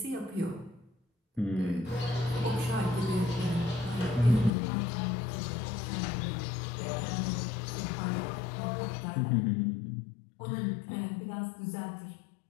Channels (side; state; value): right; drops out; at 4.5 s